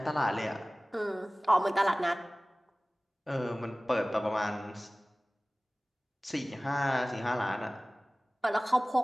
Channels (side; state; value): both; normal; correlation 0.98